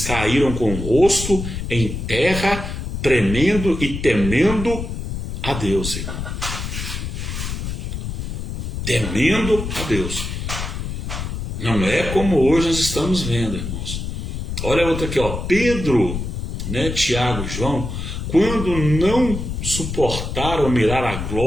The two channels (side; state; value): left; noise; rumble, 5 dB below the sound